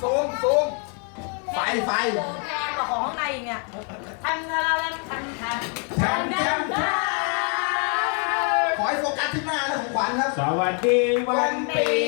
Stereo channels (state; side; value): quieter; right; 39.2 dB